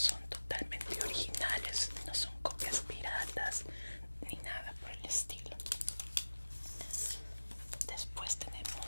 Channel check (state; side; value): inverted; both; correlation -1.00